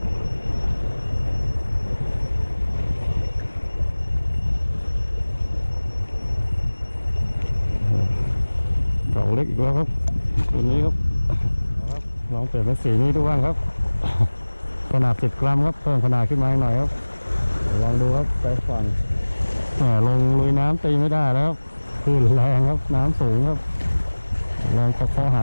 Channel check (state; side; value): inverted; both; correlation -1.00